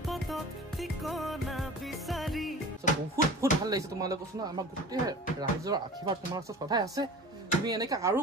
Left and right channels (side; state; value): both; normal; correlation 0.39